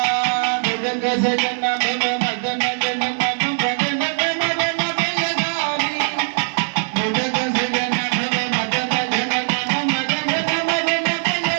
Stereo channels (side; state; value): left; silent; 57 dB below the other